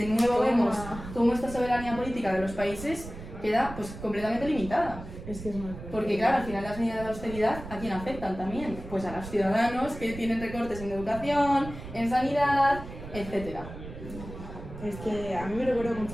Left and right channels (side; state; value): right; noise; rumble, 12 dB below the sound